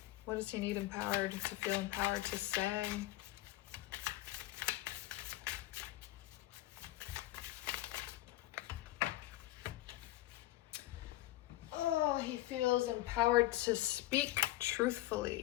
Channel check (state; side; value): quieter; right; 16.5 dB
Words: What does he need empowered to feel empowered to say? Oh, he feels empowered to speak